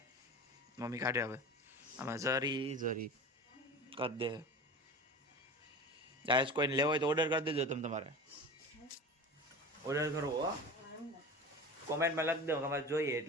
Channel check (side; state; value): both; normal; correlation 0.33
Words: મમ્મી કાઢે હવે આમાં જરી કરી દે. ગાઈસ કોઈને લેવો હોય તો ઓર્ડર કરી દેજો. તમારે ઓર્ડર કરવો હો, કોમેન્ટમાં લખી દો તમારે જોઈએ